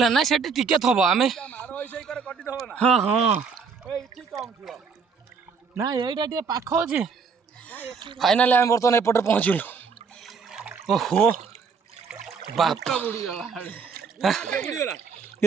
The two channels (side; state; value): left; quieter; 5.5 dB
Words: ନା ସେଠି ଟିକେ ଥବ ଆମେ ହଁ ହଁ ନା ଏଇଟା ଟିକେ ପାଖ ଅଛି। ଫାଇନାଲି ଆମେ ବର୍ତ୍ତମାନ ଏପଟେ ପହଞ୍ଚିଲୁ। ଓହୋ ବାପ